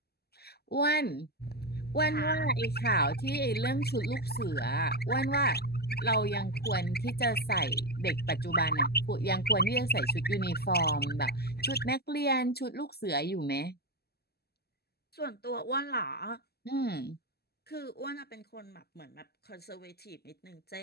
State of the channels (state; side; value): late; right; 0.46 ms